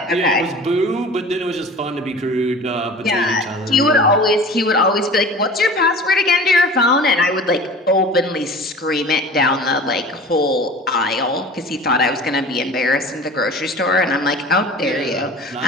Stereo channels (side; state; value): both; normal; correlation 0.40